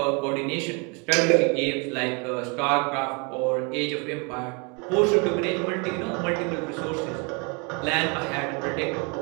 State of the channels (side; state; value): left; quieter; 32.4 dB